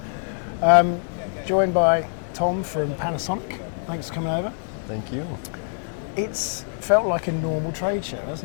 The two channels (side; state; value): right; silent; digital silence